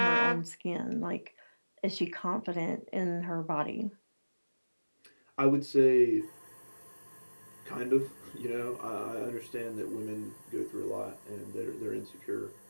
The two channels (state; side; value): inverted; both; correlation -1.00